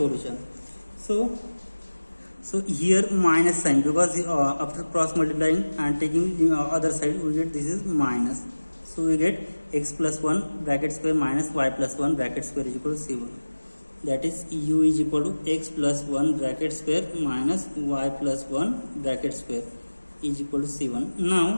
So here minus sign, because after cross multiplying and taking the other side, we get this is minus. So we get x plus 1 bracket square minus y plus 1 bracket square is equal to C1. That is, u is equal to x plus 1 bracket square minus y plus 1 bracket square is equal to C1.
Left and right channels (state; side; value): inverted; both; correlation -1.00